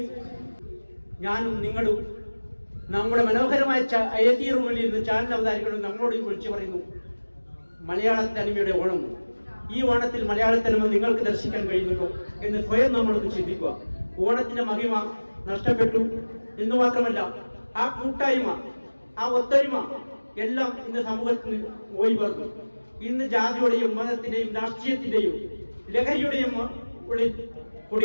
ഞാനും നിങ്ങളും നമ്മുടെ മനോഹരമായ AC റൂമിൽ ഇരുന്ന് ചാനൽ അവതാരികളും നമ്മളോട് വിളിച്ചു പറയുന്നു, മലയാള തനിമയുടെ ഓണം, ഈ ഓണത്തിൽ മലയാള തനിമ നിങ്ങൾക്ക് ദർശിക്കാൻ കഴിയുന്നുണ്ടോ എന്ന് സ്വയം നമ്മളൊന്ന് ചിന്തിക്കുക. ഓണത്തിന്റെ മഹിമ നഷ്ടപ്പെട്ടു എന്ന് മാത്രമല്ല, ആ കൂട്ടായ്മ, ആ ഒത്തൊരുമ എല്ലാം ഇന്ന് സമൂഹത്തിന് പോയി പറഞ്ഞു. ഇന്ന് ജാതിയുടെയും മതത്തിന്റെയും രാഷ്ട്രീയത്തിന്റെയും ലഹരിയുടെയും ഉള്ളിൽ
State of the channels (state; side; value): inverted; both; correlation -1.00